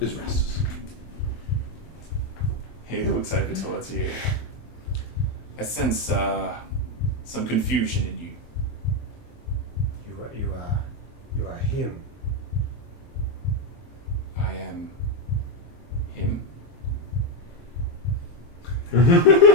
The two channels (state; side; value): late; right; 23 ms